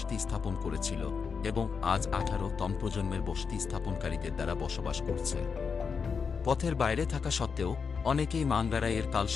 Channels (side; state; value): right; quieter; 5.7 dB